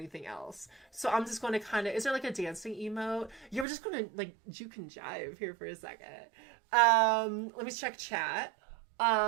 else. So I'm just going to kind of, is there like a dancing emote? Yeah, we're just going to like juke and jive here for a second. Let me check chat.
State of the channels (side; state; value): left; drops out; at 3.7 s